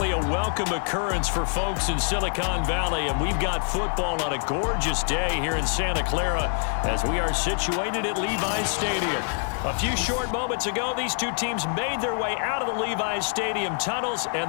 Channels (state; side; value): silent; right; 59 dB below the other